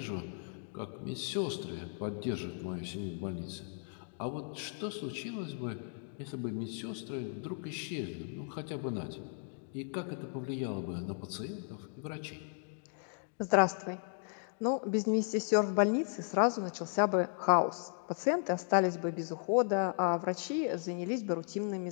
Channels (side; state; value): right; silent; 54 dB below the other